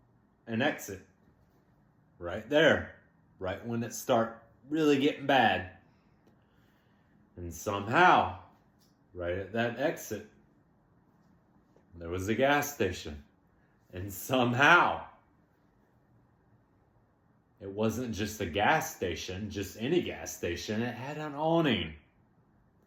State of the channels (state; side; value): identical; both; correlation 1.00